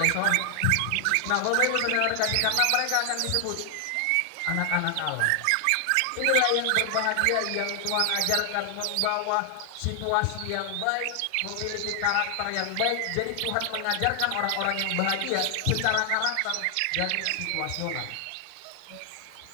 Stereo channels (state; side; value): different; both; correlation 0.00